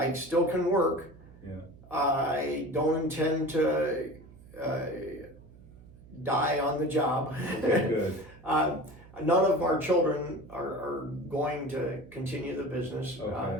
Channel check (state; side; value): noise; right; hum, 21 dB below the sound